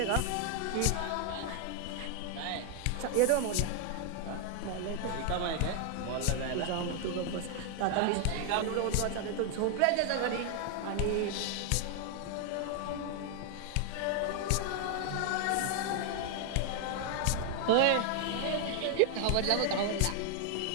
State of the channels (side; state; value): both; different; correlation 0.00